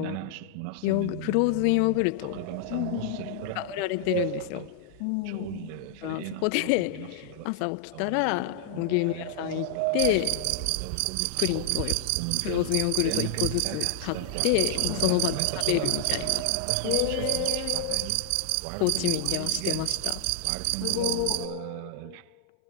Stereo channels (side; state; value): both; different; correlation 0.00